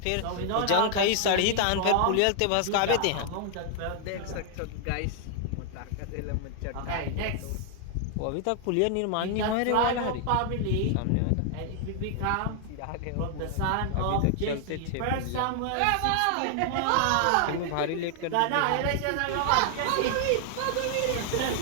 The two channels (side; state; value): both; different; correlation 0.00